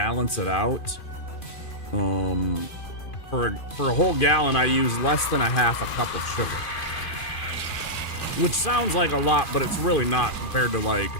it out. For a whole gallon, I use less than a half a cup of sugar, which sounds like a lot, but it's really not compared to like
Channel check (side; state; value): right; late; 2.5 ms